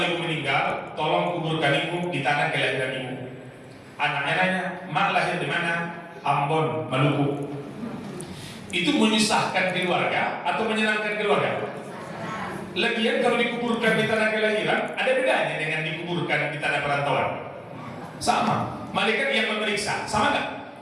meninggal, tolong kuburkan ibu di tanah kelahiran ibu. Anaknya nanya, mak lahir di mana? Ambon, Maluku. Itu menyusahkan keluarga atau menyenangkan keluarga? Lagian kalau dikuburkan di tanah kelahiran, ada bedanya dengan dikuburkan di tanah perantauan? Sama. Malaikat yang memeriksa, sama nggak?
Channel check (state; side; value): identical; both; correlation 1.00